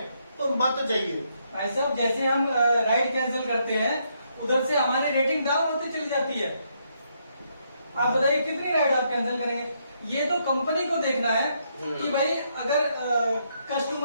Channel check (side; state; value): both; inverted; correlation -0.75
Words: तो मत जाइए। भाई साहब जैसे हम राइड कैंसिल करते हैं, उधर से हमारी रेटिंग डाउन होती चली जाती है। आप बताइए कितनी राइड आप कैंसिल करेंगे? ये तो कंपनी को देखना है कि भाई अगर